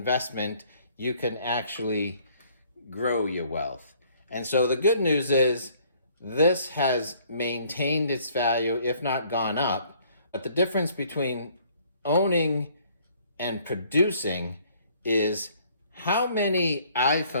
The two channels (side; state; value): both; inverted; correlation -0.60